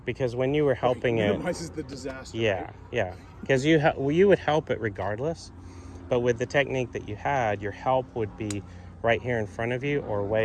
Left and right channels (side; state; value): both; identical; correlation 1.00